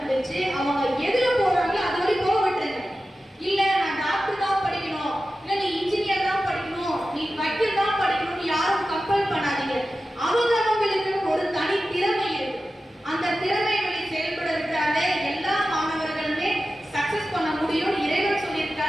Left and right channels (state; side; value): normal; both; correlation 0.94